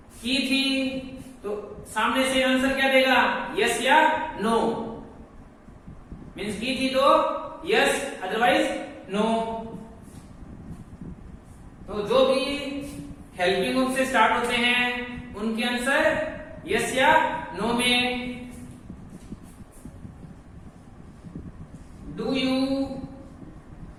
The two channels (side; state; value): both; identical; correlation 1.00